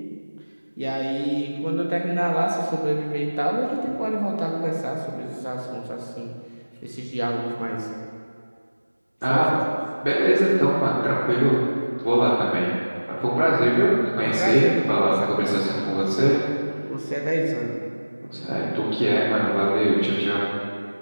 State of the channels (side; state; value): both; inverted; correlation -1.00